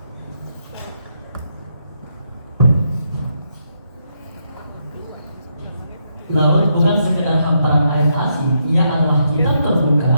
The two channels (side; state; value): both; inverted; correlation -0.79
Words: Laut bukan sekedar hamparan air asin, ia adalah kitab